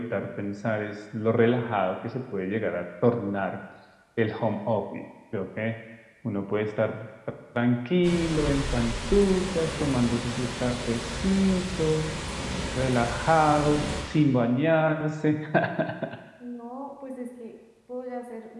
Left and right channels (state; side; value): identical; both; correlation 1.00